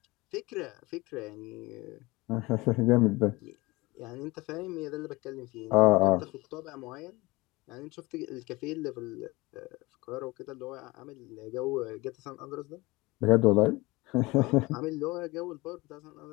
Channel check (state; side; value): quieter; right; 22.1 dB